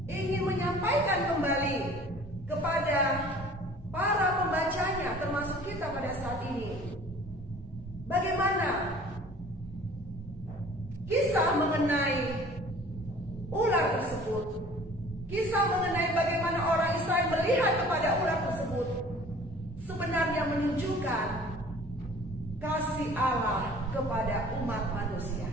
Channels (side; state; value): both; normal; correlation 0.49